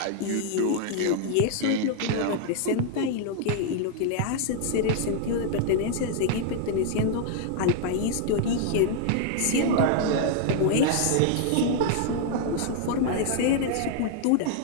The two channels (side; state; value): both; different; correlation 0.00